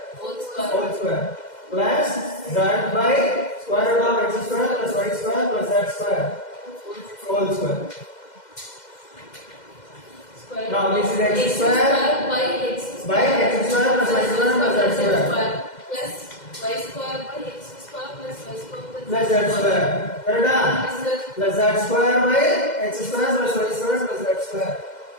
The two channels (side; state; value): right; late; 2.1 ms